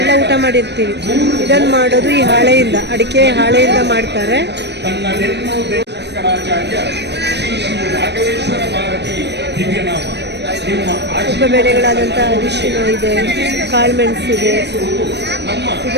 ಊಟ ಮಾಡಿರ್ತೀವಿ. ಇದನ್ನು ಮಾಡೋದು ಈ ಹಾಳೆಯಿಂದ, ಅಡಿಕೆ ಹಾಳೆಯಿಂದ ಮಾಡ್ತಾರೆ. ಉಪಬೆಳೆಗಳಾದಂಥ ಅರಿಶಿನ ಇದೆ, ಕಾಳುಮೆಣಸಿದೆ,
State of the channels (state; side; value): late; left; 0.50 ms